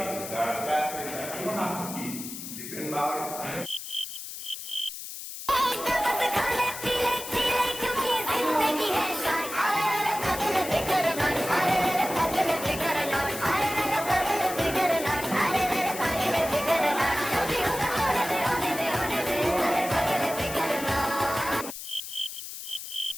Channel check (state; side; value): noise; left; hiss, 9 dB below the sound